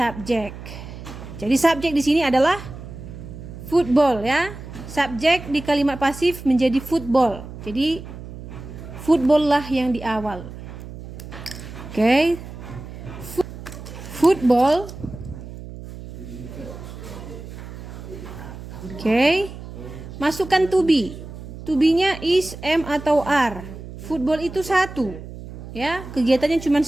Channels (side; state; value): right; noise; hum, 12 dB below the sound